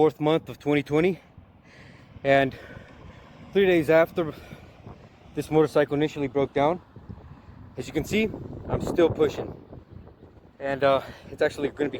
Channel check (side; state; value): both; identical; correlation 1.00